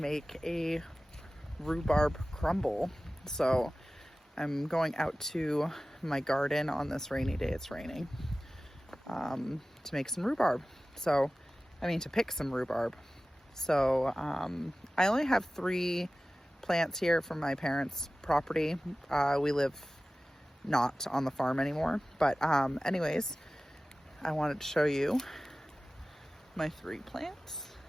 a rhubarb crumble. So I'm going out to my garden on this rainy day. It's raining. To make some rhubarb. To pick some rhubarb. So I only have 3 plants here from my parents' property. We live not on the farm anymore. But anyways, I wanted to show you my 3 plants.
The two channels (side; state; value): both; normal; correlation 0.96